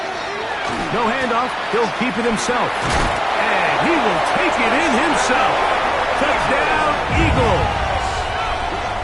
No handoff. He'll keep it himself. And he will take it in himself. Touchdown, Eagles.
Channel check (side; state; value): both; identical; correlation 1.00